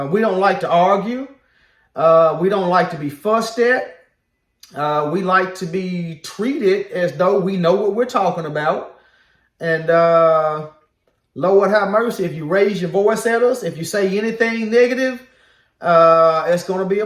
We don't like to argue. We don't like to be fussed at. We like to be treated as though we know what we're talking about. And Lord have mercy, if you raise your voice at us, if you say anything negative, it's going to be a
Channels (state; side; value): identical; both; correlation 1.00